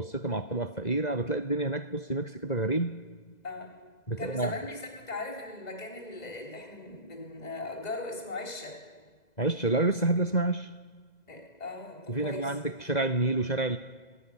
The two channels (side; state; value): right; late; 2.0 ms